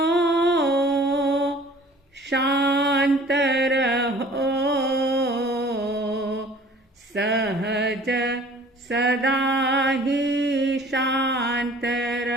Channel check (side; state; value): both; normal; correlation 0.50